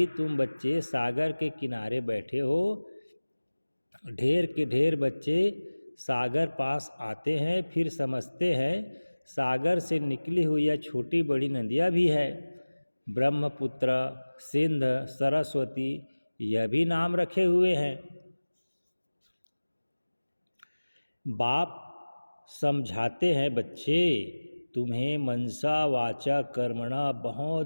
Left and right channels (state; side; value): inverted; both; correlation -1.00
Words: तुम बच्चे सागर के किनारे बैठे हो, ढेर के ढेर बच्चे सागर पास आते हैं, फिर समझते हैं सागर से निकली हुई यह छोटी बड़ी नदियाँ भी है। ब्रह्मपुत्र, सिंध, सरस्वती, यह भी नाम रखे हुए हैं। बाप समझाते हैं बच्चे तुम्हें मनसा वाचा कर्मणा